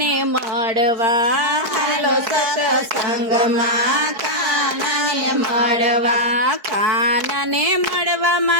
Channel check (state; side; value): late; left; 4.7 ms